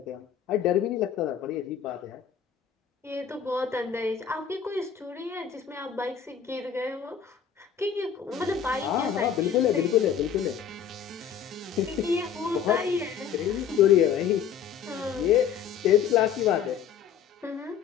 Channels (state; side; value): quieter; right; 8.1 dB